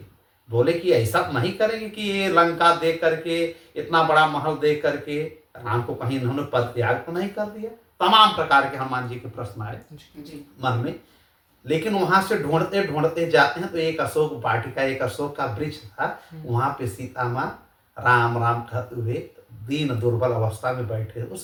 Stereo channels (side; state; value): both; identical; correlation 1.00